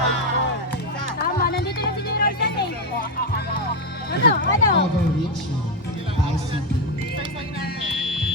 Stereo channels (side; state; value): both; normal; correlation 0.07